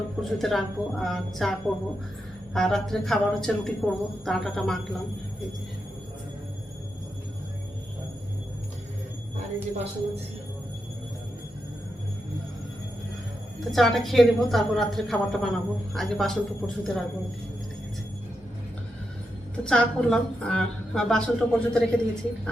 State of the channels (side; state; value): both; normal; correlation 0.86